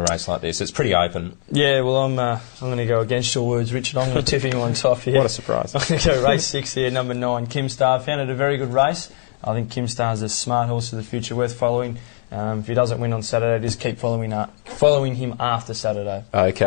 race like this. It's pretty open. Yeah, well, I'm going to go against your words, Richard. I'm going to tip him on top here. What a surprise. I'm going to go race 6 here, number 9, Kim Star. Found it a very good race. I think Kim Star's a smart horse of the future, worth following. If he doesn't win on Saturday, just keep following him after Saturday.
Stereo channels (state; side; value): silent; right; digital silence